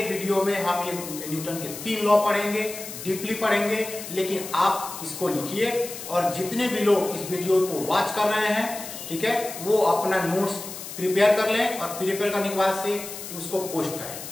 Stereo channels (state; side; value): noise; left; hiss, 10 dB below the sound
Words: वीडियो में हम ये न्यूटन के 3 लॉ पढ़ेंगे, डीपली पढ़ेंगे, लेकिन आप इसको लिखिए और जितने भी लोग इस वीडियो को वॉच कर रहे हैं, ठीक है, वो अपना नोट्स प्रिपेयर कर लें और प्रिपेयर करने के बाद से उसको पोस्ट करें